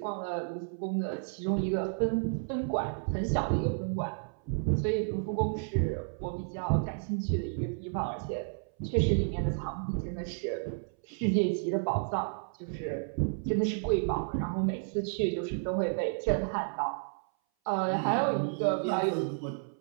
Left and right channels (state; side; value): silent; left; 57 dB below the other